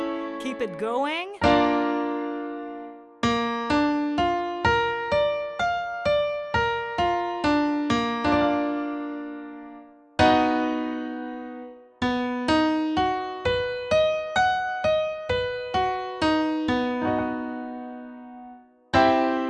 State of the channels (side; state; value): both; identical; correlation 1.00